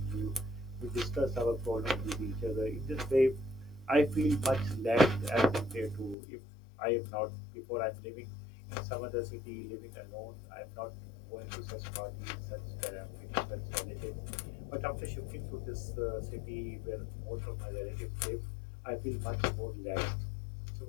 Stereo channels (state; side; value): drops out; right; at 6.2 s